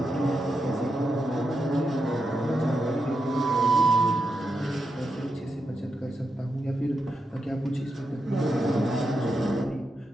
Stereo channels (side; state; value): both; normal; correlation 0.86